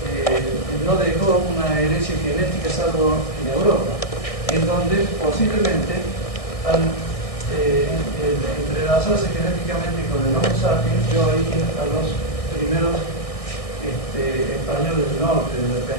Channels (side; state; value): right; late; 1.6 ms